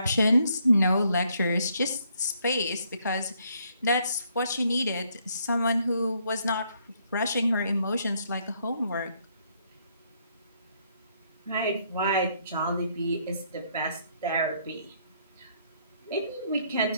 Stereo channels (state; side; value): inverted; both; correlation -0.70